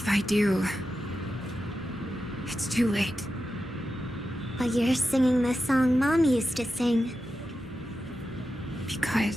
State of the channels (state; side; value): normal; both; correlation 0.90